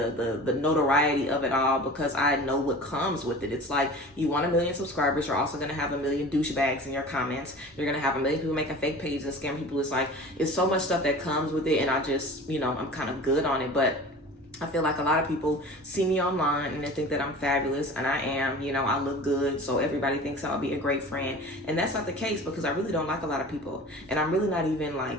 notoriety of it all, because I know what comes with it. It's like, you want 1 million subscribers, you're also gonna have 1 million douchebags in your comments. You're gonna have 1 million people making fake pages and scam people. It's like, it's so much stuff that comes with it, and I just, you know, I'm kind of good on it. But I feel like a lot of people see me online and they think that I'm fabulous, and I am. You know, I look good, so everybody thinks I'll be a great friend. And that's not the case, because I really don't like a lot of people. And I'm really not even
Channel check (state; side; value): normal; both; correlation 0.39